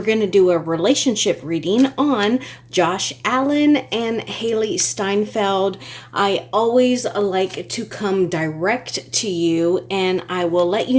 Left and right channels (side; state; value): both; identical; correlation 1.00